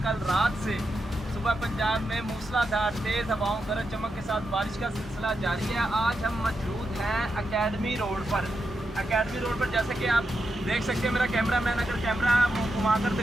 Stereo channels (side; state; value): both; normal; correlation 0.86